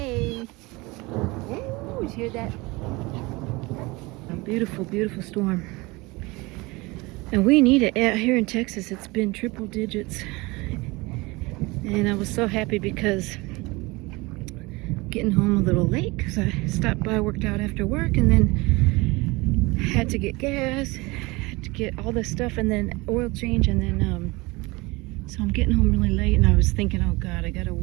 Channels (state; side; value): quieter; left; 23.7 dB